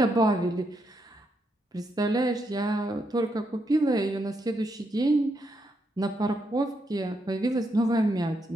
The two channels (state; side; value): normal; both; correlation 0.80